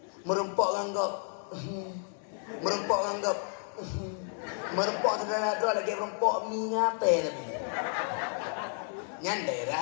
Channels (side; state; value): right; silent; 56 dB below the other